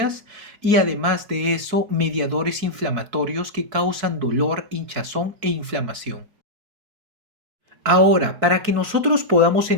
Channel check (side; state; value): left; late; 4.6 ms